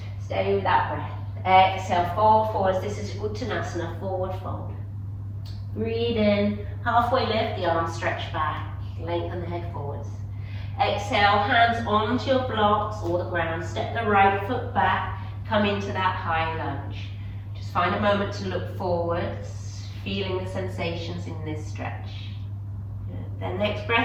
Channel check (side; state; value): both; identical; correlation 1.00